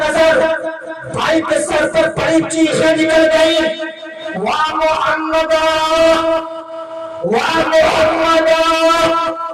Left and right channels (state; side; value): identical; both; correlation 1.00